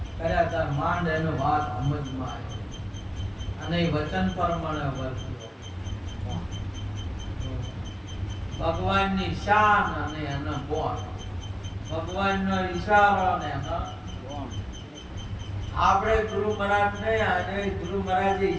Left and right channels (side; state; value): both; identical; correlation 1.00